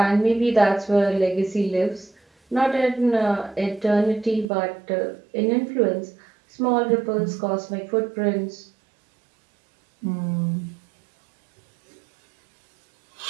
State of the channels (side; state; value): left; drops out; at 4.5 s